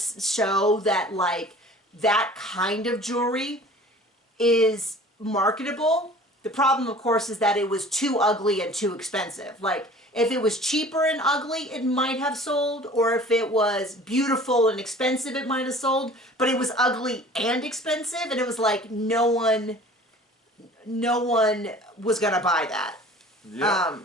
show that, like, that kind of jewelry is marketable. The problem, of course, is that it was too ugly and too expensive. Like, if it was cheaper and ugly, it might have sold, or if it was beautiful and expensive, it might have sold, but it was ugly and expensive, and it was like, no one was gonna buy that. Yeah.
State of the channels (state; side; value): normal; both; correlation 0.46